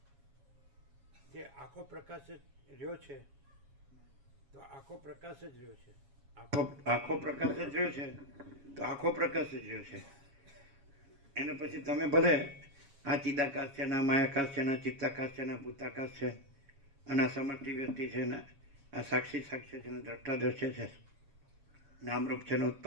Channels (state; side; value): late; left; 7.2 ms